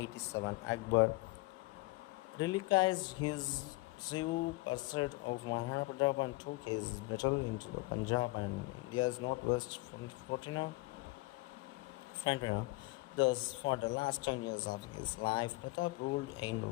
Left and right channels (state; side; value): quieter; right; 22.8 dB